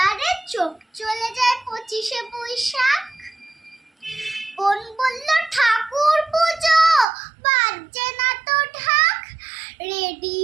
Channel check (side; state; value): left; drops out; at 7.1 s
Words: চোখ চলে যায় ২৫শে বৈশাখ। বোন বলল ঠাকুর পুজো, বাজছে না তো ঢাক,